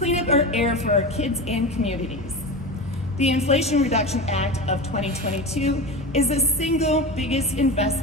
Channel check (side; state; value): both; normal; correlation 0.26